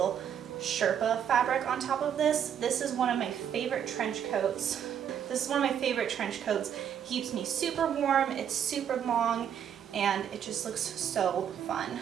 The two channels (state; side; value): quieter; left; 8.9 dB